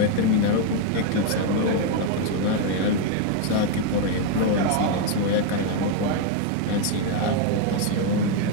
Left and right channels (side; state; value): both; different; correlation 0.01